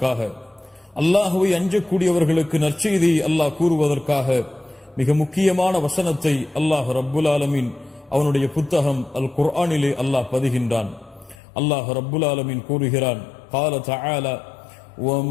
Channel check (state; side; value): drops out; right; at 11.4 s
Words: அல்லாஹ்வை அஞ்சக்கூடியவர்களுக்கு நற்செய்தியை அல்லாஹ் கூறுவதற்காக மிக முக்கியமான வசனத்தை அல்லாஹ் ரப்புல் ஆலமீன் அவனுடைய புத்தகம் அல் குர்ஆனிலே அல்லாஹ் பதிகின்றான். அல்லாஹ் ரப்புல் ஆலமீன் கூறுகிறான், قال تعالى